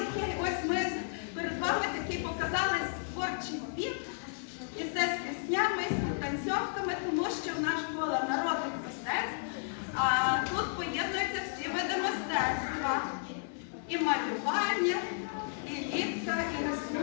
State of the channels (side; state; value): right; silent; 56 dB below the other